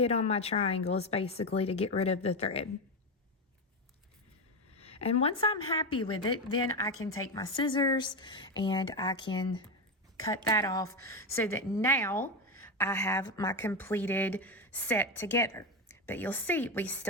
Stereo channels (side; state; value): both; normal; correlation 0.14